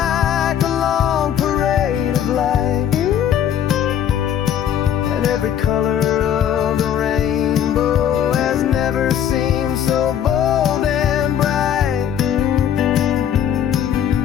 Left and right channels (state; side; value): quieter; right; 9.6 dB